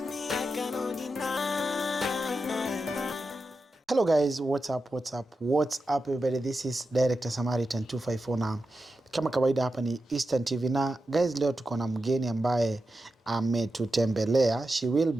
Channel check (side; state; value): both; normal; correlation 0.90